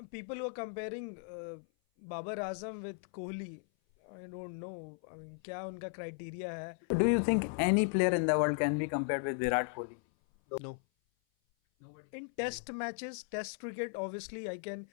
people who are comparing Babar Azam with Kohli, I don't know, I mean, क्या उनका क्राइटेरिया है। Do you think any player in the world can be compared with Virat Kohli? No. In test matches, test cricket, obviously I can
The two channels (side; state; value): right; silent; 54 dB below the other